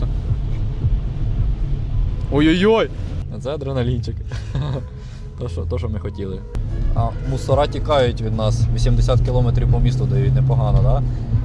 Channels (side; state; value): both; identical; correlation 1.00